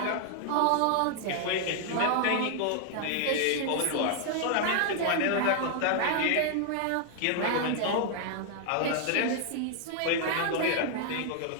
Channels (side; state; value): both; different; correlation 0.00